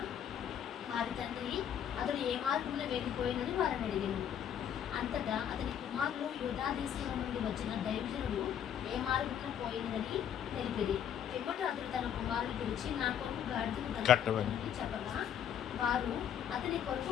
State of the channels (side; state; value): right; quieter; 9.3 dB